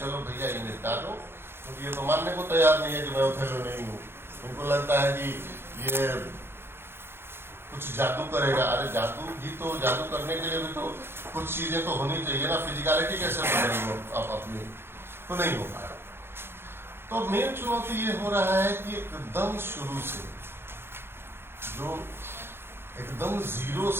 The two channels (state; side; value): late; left; 0.11 ms